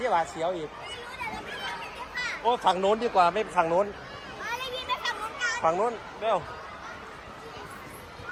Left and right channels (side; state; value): both; identical; correlation 1.00